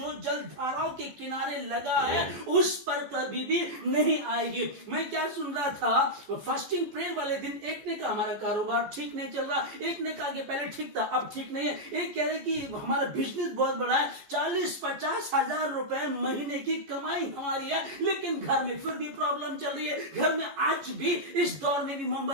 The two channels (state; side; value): late; left; 14 ms